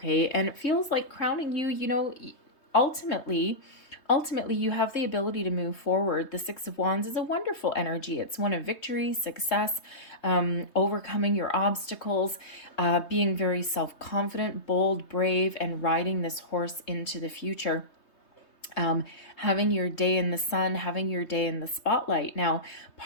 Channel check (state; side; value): late; right; 3.2 ms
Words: And it feels like crowning you, ultimately you have the ability to move forward. The Six of Wands is a wonderful energy. It's one of victory, success, overcoming your obstacles, being very self-confident, bold, brave, and riding this horse into the future. Having your day in the sun, having your day in the spotlight. Now,